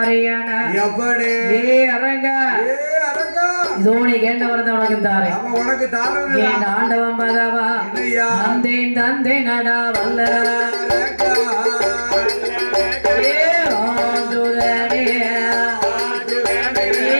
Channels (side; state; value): both; inverted; correlation -1.00